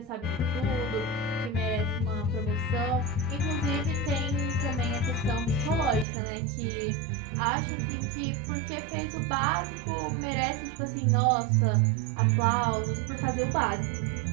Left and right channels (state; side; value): drops out; left; at 6.1 s